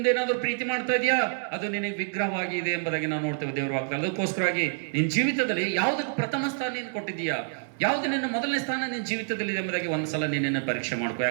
ಏನಾದರೂ ಪ್ರೀತಿ ಮಾಡ್ತಾ ಇದೆಯಾ? ಅದು ನಿನಗೆ ವಿಗ್ರಹವಾಗಿ ಇದೆ ಎಂಬುದಾಗಿ ನಾವು ನೋಡ್ತೇವೆ ದೇವರು ವಾಕ್ಯ. ಅದಕ್ಕೋಸ್ಕರವಾಗಿ ನಿನ್ನ ಜೀವಿತದಲ್ಲಿ ಯಾವುದಕ್ಕೆ ಪ್ರಥಮ ಸ್ಥಾನ ನೀನು ಕೊಟ್ಟಿದ್ದೀಯಾ, ಯಾವುದು ನಿನ್ನ ಮೊದಲನೇ ಸ್ಥಾನ ನಿನ್ನ ಜೀವಿತದಲ್ಲಿ ಇದೆ ಎಂಬುದಾಗಿ ಒಂದ್ಸಲ ನೀನನ್ನು ಪರೀಕ್ಷೆ ಮಾಡ್ಕೋ.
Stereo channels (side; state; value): left; silent; digital silence